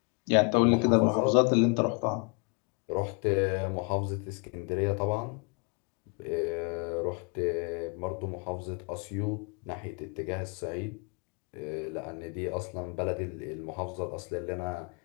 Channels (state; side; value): quieter; right; 34.9 dB